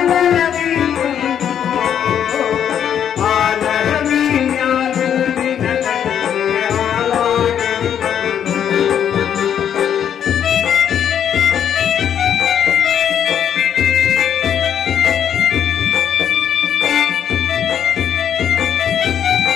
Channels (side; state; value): right; quieter; 9.1 dB